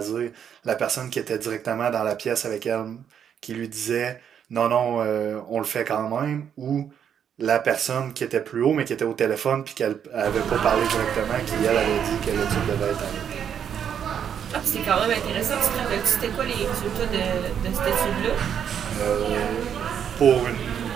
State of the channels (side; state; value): left; quieter; 8.4 dB